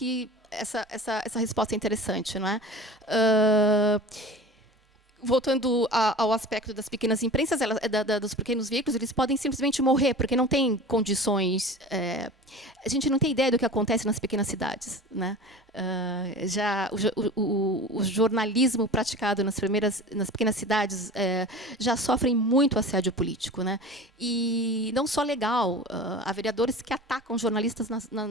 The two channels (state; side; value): normal; both; correlation 0.37